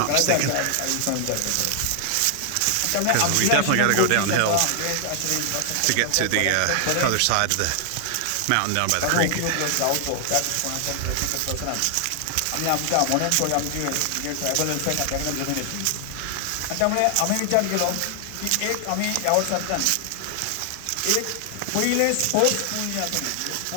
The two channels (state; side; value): different; both; correlation 0.00